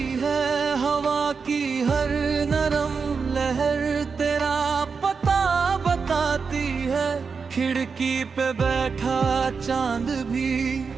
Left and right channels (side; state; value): left; quieter; 5.3 dB